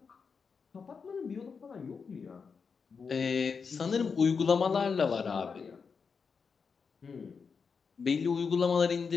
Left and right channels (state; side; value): quieter; right; 5.5 dB